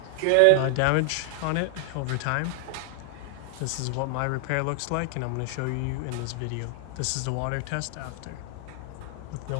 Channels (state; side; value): different; both; correlation 0.00